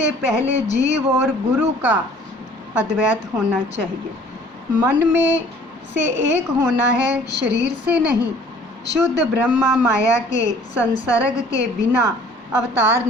पहले जीव और गुरु का अद्वैत होना चाहिए। मन में से एक होना है, शरीर से नहीं। शुद्ध ब्रह्मा माया के संसर्ग के बिना अवतार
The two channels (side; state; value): both; normal; correlation 0.53